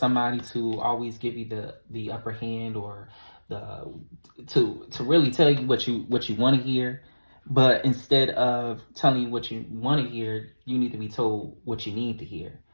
to always give you the upper hand, or to really tell you what you want to hear, but instead of telling you what you want to hear, you need to be told what you need to hear.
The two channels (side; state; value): both; inverted; correlation -1.00